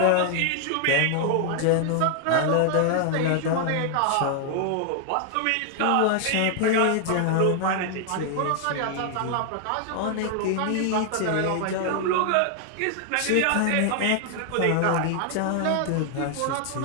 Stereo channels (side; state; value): both; different; correlation 0.00